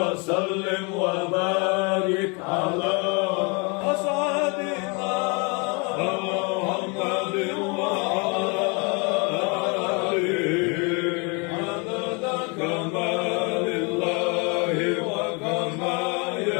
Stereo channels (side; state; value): right; quieter; 32.1 dB